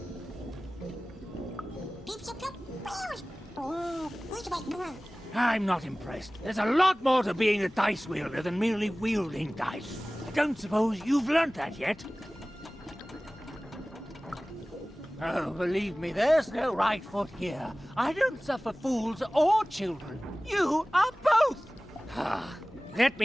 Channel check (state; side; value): normal; both; correlation 0.98